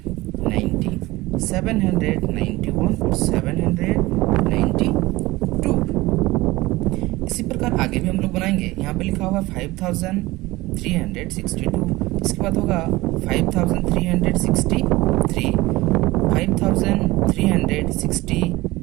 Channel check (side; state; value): left; quieter; 19.9 dB